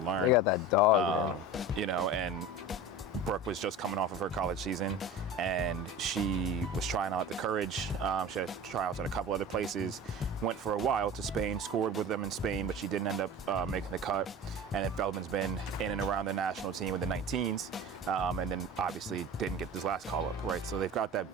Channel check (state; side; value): normal; both; correlation 0.34